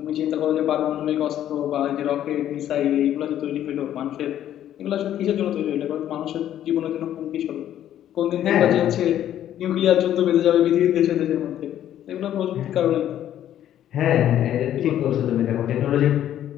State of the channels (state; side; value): quieter; right; 11.3 dB